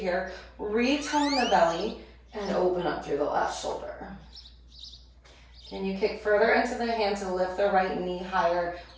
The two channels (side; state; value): both; identical; correlation 1.00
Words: Retone the belly and open up through the left shoulder. Can you kick further into the hand to lift the right knee higher